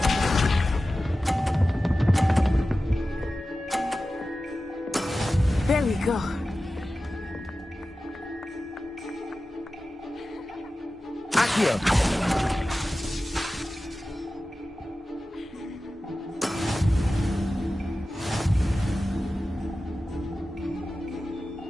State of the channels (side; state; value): both; normal; correlation 0.95